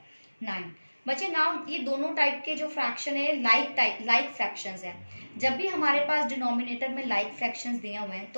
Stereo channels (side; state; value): both; inverted; correlation -1.00